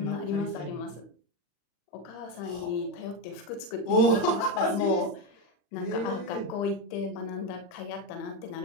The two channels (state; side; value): late; right; 40 ms